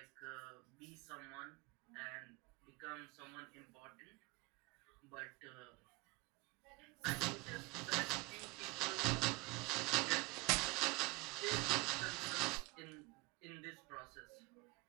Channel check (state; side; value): quieter; left; 25.3 dB